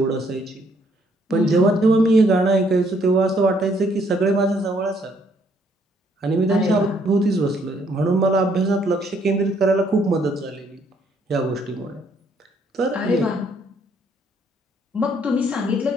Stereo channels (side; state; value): both; normal; correlation 0.68